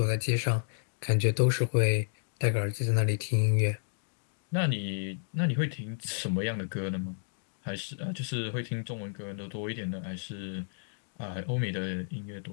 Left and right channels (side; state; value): right; silent; digital silence